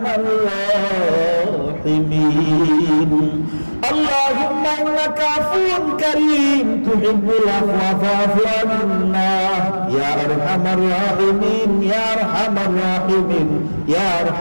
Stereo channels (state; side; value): inverted; both; correlation -1.00